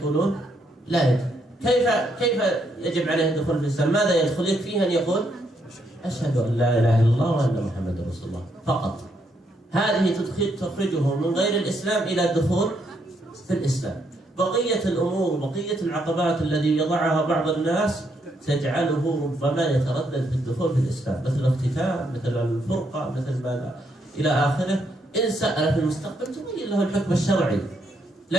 لا يجب. كيف يجب عليه الدخول في الإسلام؟ ماذا يدخل؟ يكفيه أن يقول أشهد أن لا إله إلا الله وأن محمد رسول الله فقط. هذه تخرجه من غير الإسلام إلى الدخول في الإسلام. بقية الأمور وبقية العقبات التي يضعها بعض الناس تجعله ربما يتردد في الدخول في الإسلام، مثل الاختتام، مثل الفرقة، مثل ما إلى آخره. إن سأل في المستقبل تبين له الحكم الشرعي،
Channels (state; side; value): normal; both; correlation 0.75